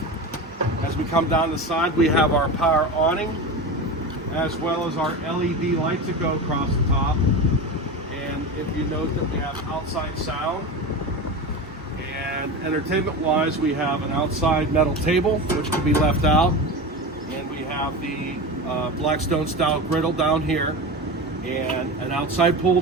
As we come down the side, we have our power awning, as well as our LED lights that go across the top. And if you note that we have outside sound, and entertainment-wise, we have an outside metal table, which can be left out. And we have the Blackstone style griddle down here, and an outside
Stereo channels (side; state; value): both; normal; correlation 0.25